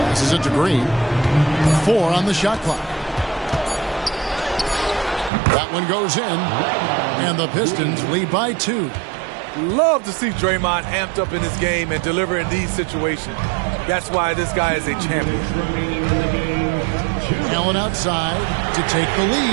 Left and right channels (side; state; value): left; drops out; at 5.3 s